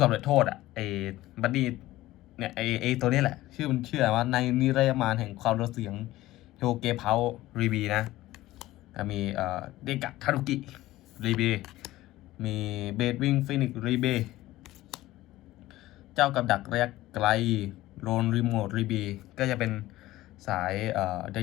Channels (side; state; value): right; quieter; 16.6 dB